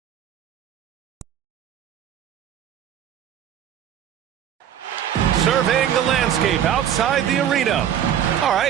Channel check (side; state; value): left; quieter; 9.8 dB